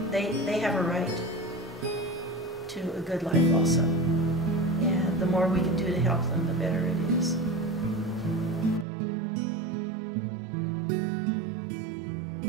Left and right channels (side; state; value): left; drops out; at 8.8 s